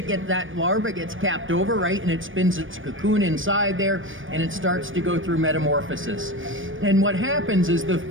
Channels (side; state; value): left; late; 0.57 ms